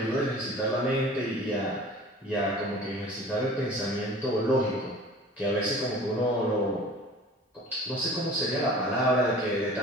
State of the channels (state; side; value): normal; both; correlation 0.44